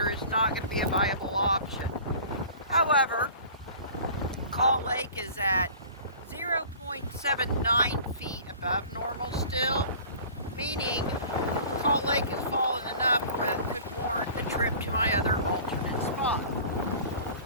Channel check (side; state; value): both; inverted; correlation -0.44